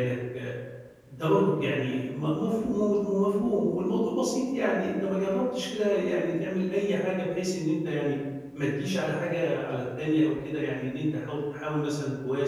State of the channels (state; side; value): identical; both; correlation 1.00